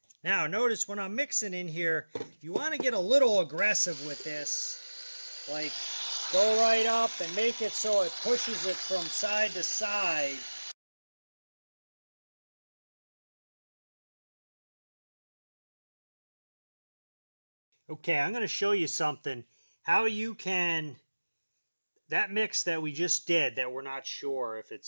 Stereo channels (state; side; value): inverted; both; correlation -1.00